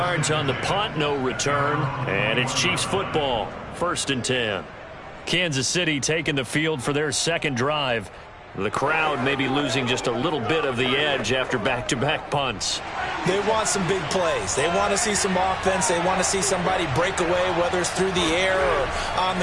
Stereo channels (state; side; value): identical; both; correlation 1.00